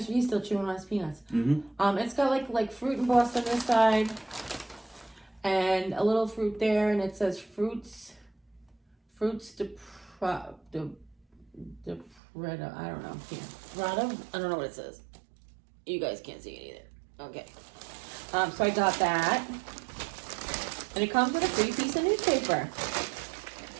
still chewing on his peanuts. It's got like fruit embossed on this side, and a little fruit there, and it says fruits de Prada, I don't know. Prada? I don't know what it says. You guys can't see it either. Okay. So I got that. And it comes with a free piece of newspaper.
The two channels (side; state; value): left; drops out; at 12.2 s